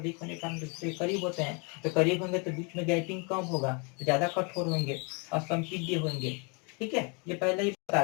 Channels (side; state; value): right; quieter; 33.9 dB